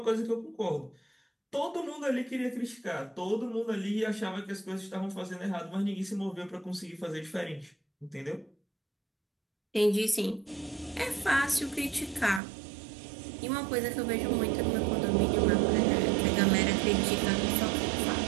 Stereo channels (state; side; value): drops out; left; at 12.4 s